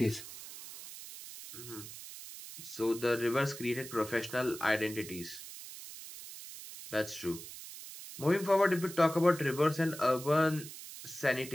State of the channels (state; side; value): noise; right; hiss, 13 dB below the sound